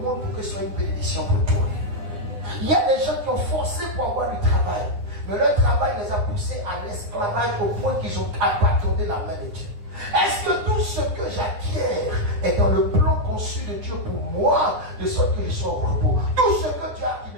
pour que ce soit une bénédiction pour toi. Il y a des gens qui ont forcé pour avoir du travail, mais leur travail les a poussés à l'esclavage au point qu'ils ont abandonné la main de Dieu. Est-ce que tout ce que j'acquiers est dans le plan conçu de Dieu pour moi, de sorte que je sois au repos? Tout ce que tu as qui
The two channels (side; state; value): left; late; 9.7 ms